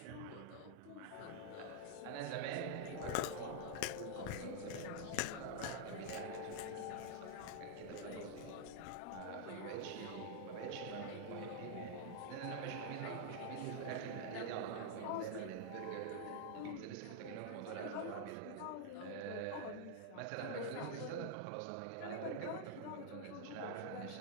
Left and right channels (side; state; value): both; different; correlation -0.01